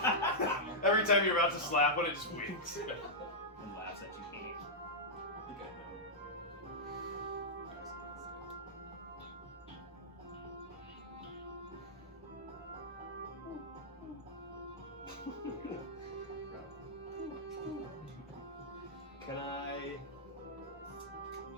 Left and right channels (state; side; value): normal; both; correlation -0.09